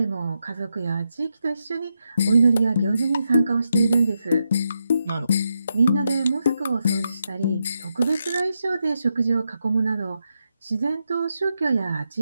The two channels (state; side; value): inverted; both; correlation -0.84